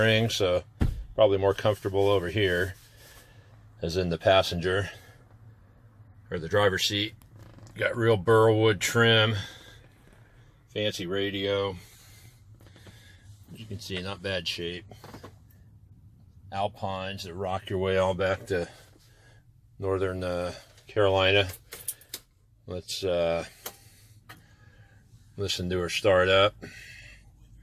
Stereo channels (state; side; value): identical; both; correlation 1.00